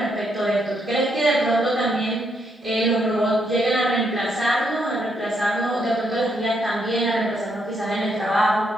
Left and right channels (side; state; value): both; normal; correlation 0.76